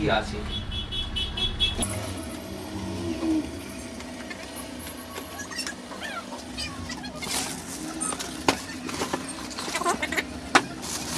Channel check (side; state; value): both; identical; correlation 1.00